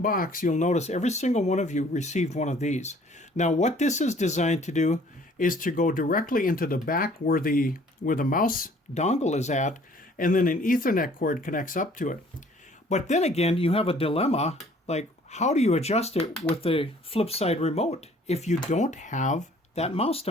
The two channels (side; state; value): both; normal; correlation 0.56